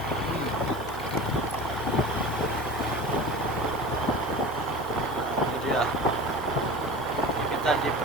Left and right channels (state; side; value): normal; both; correlation 0.34